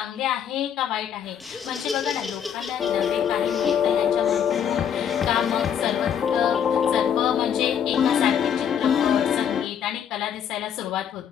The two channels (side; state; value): right; quieter; 8.6 dB